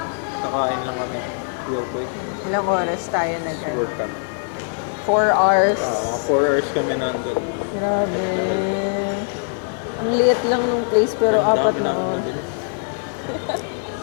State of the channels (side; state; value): right; silent; 59 dB below the other